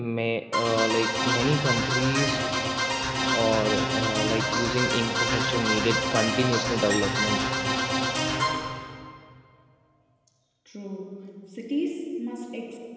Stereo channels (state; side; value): identical; both; correlation 1.00